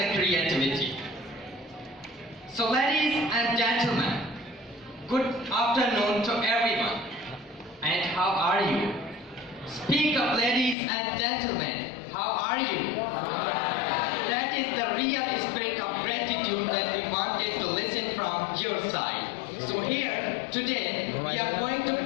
creativity. So ladies and gentlemen, good afternoon to everyone. And how are you? Speak up, ladies and gentlemen, how are you? That is the real spirit of gratitude that we wanted to listen from your side. So here, today, we are going to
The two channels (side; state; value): right; drops out; at 10.8 s